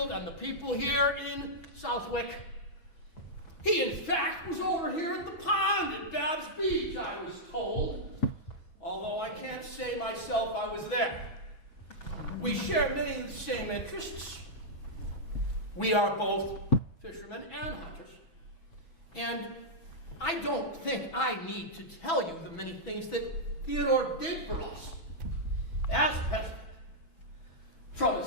and the people here in Southwick. He, in fact, was over here at the pond at Babb's Beach, I was told, although I can't say myself I was there. We share many of the same interests. We are both fishermen and hunters. And I don't think I need to tell you the many things that Theodore did for us as president. From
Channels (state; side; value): late; right; 6.1 ms